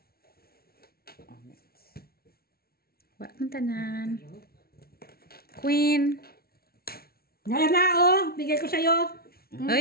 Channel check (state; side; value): late; right; 0.44 ms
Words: Amit. Wala mong tanan. Queen. Ngayon na, oh! Bigay ko sa'yo.